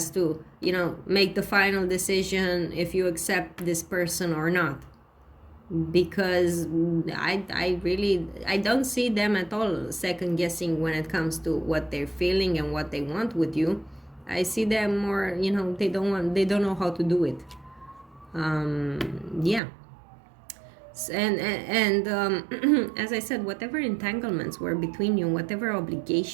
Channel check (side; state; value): left; drops out; at 19.6 s